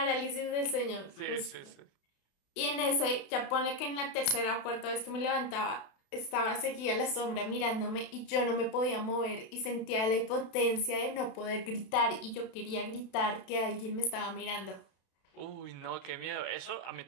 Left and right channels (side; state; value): right; late; 32 ms